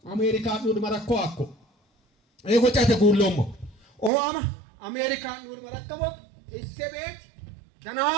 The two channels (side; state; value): left; drops out; at 4.1 s